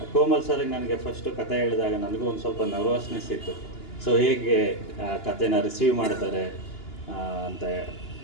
ಕೋಮಲ್ ಸರ್ಗೆ ನನಗೆ ಫಸ್ಟು ಕತೆ ಹೇಳಿದಾಗ ನನಗೂ ಒಂದು ಸ್ವಲ್ಪ ನರ್ವಸ್ನೆಸ್ ಇತ್ತು. ಸೊ ಹೇಗೆ ಕತೆನ ರಿಸೀವ್ ಮಾಡ್ತಾರೆ ಅಂತ.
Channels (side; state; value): right; late; 2.9 ms